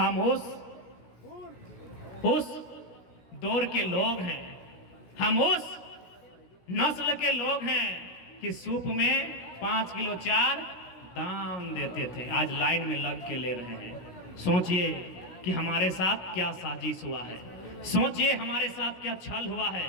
उस दौर के लोग हैं, हम उस नस्ल के लोग हैं कि सूप में 5 किलो चार दान देते थे, आज लाइन में लग के ले रहे हैं। सोचिए कि हमारे साथ क्या साजिश हुआ है, सोचिए हमारे साथ क्या छल हुआ है,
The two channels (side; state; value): right; late; 16 ms